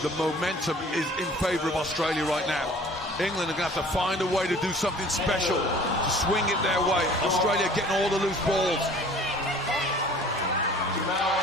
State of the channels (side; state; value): both; normal; correlation 0.49